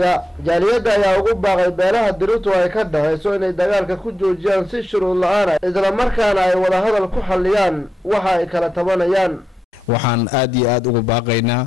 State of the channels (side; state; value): both; normal; correlation 0.87